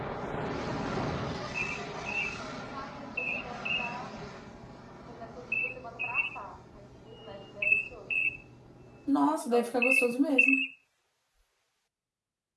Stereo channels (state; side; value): identical; both; correlation 1.00